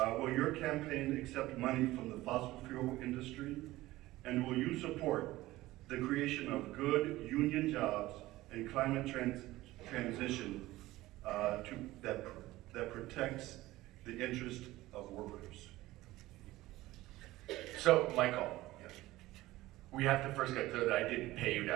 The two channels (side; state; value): left; quieter; 17.5 dB